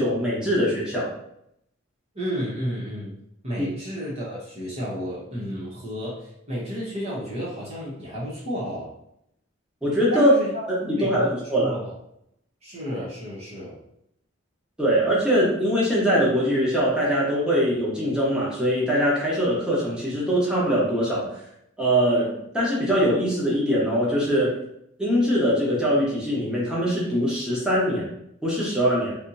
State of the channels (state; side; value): normal; both; correlation 0.26